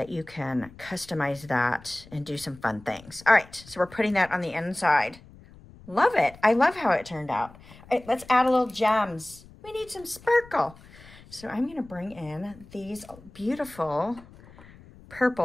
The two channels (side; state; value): left; noise; rumble, 22 dB below the sound